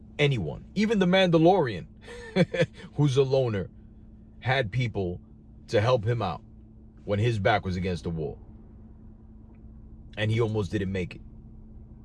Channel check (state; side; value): identical; both; correlation 1.00